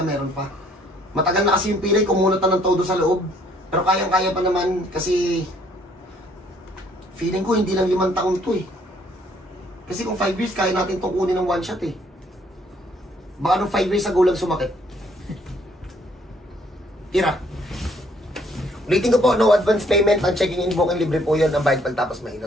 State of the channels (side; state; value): both; normal; correlation 0.64